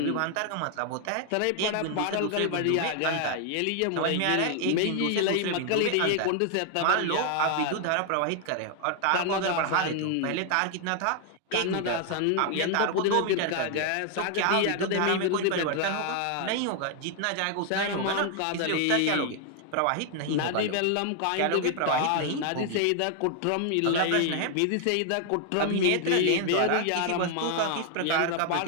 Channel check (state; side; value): different; both; correlation 0.00